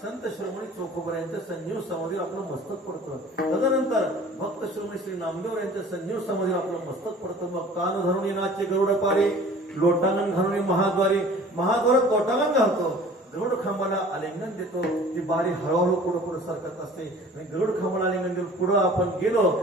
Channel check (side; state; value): both; normal; correlation 0.47